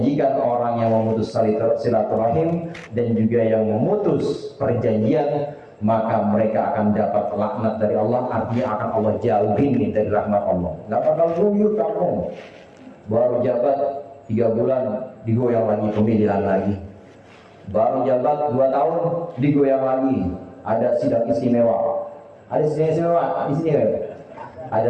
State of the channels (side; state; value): both; identical; correlation 1.00